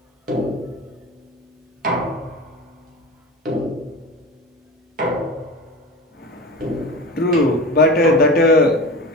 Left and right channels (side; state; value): both; normal; correlation 0.30